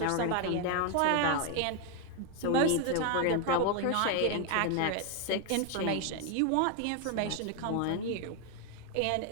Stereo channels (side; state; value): both; different; correlation 0.01